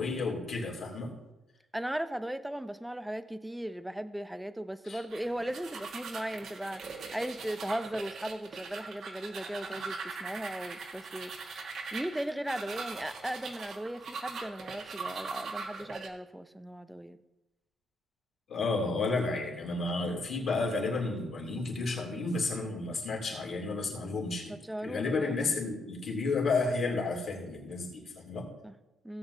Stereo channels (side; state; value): both; normal; correlation 0.80